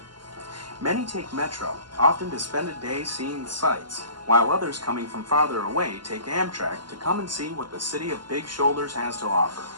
Many take Metro, often to spend a day seeing the sights, while others coming from farther away take Amtrak to come and see what the city of Big Shoulders has to offer.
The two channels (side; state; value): left; late; 0.72 ms